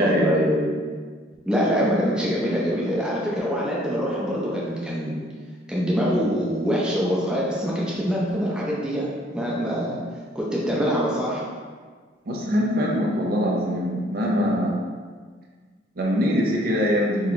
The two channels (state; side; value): normal; both; correlation 0.61